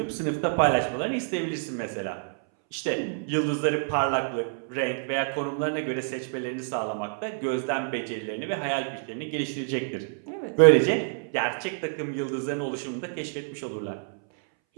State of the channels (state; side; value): silent; left; 60 dB below the other